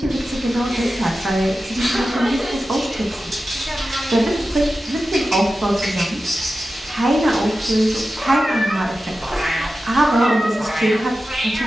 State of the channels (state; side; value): normal; both; correlation 0.93